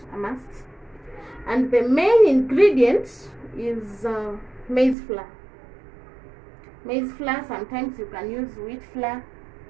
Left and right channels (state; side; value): drops out; left; at 5.0 s